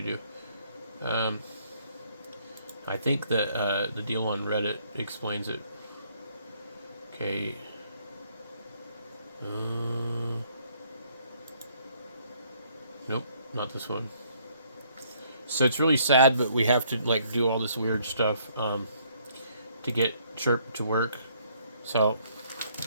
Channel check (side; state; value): both; inverted; correlation -0.66